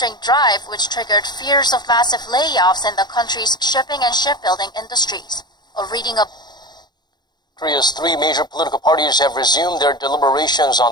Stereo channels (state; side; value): late; right; 0.21 ms